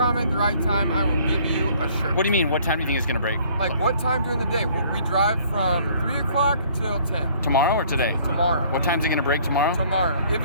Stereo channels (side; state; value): both; inverted; correlation -0.58